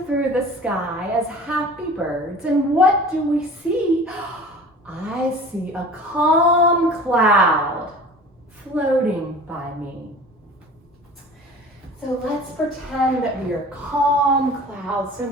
through the sky as happy birds. And what do we see? I see a calm cloud floating by me. So let's pretend that we are calm clouds. So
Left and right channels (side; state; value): both; normal; correlation 0.41